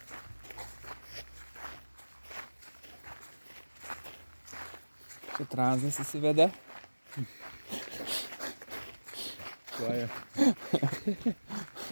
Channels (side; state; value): both; inverted; correlation -1.00